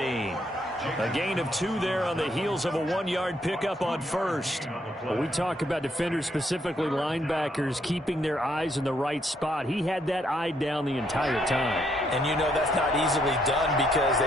A gain of 2 there on the heels of a 1-yard pickup on 1st. Well, we talk about defenders, specifically linebackers, keeping their eyes in the right spot. He had that eye down the entire time. And you know that's not easily done because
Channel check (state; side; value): normal; both; correlation 0.73